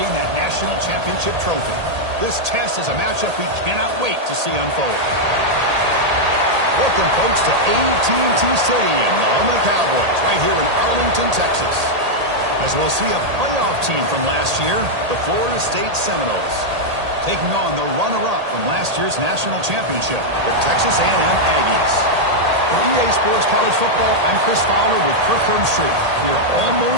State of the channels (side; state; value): left; late; 1.8 ms